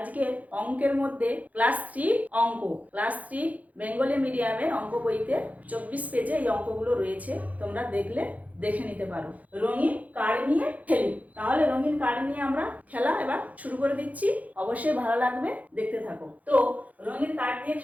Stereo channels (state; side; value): late; left; 0.075 ms